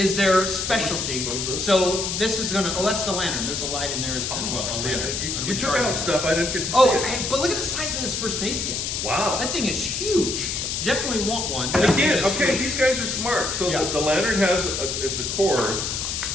their specialty. What was this? So this is going to, that's the lantern. There's a light in there as well. A See, lantern. you took out stuff I didn't get to see. Oh, it. hey, but look at the size of this first aid kit. Wow. That thing is huge. You definitely want one. And That again, thing is okay, huge. these guys are smart. So Yeah. the lantern has it's a cord.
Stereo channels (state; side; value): noise; left; hiss, 2 dB below the sound